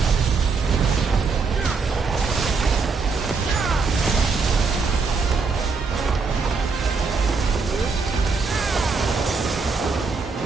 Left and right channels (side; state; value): left; quieter; 4.6 dB